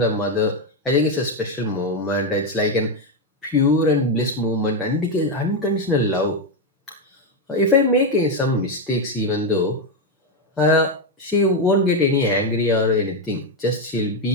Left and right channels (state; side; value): normal; both; correlation 0.06